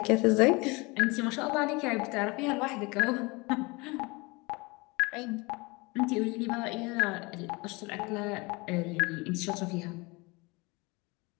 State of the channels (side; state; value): right; quieter; 25.9 dB